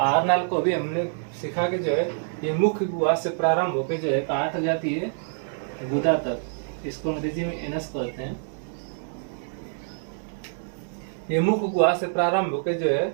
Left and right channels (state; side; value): silent; left; digital silence